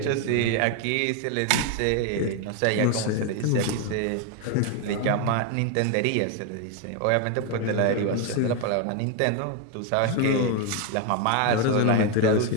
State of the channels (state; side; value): different; both; correlation 0.01